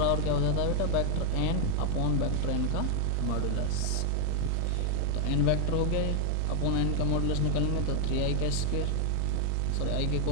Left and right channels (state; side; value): different; both; correlation 0.01